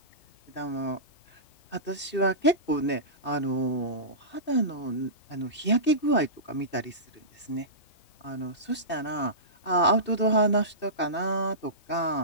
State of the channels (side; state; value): right; late; 2.6 ms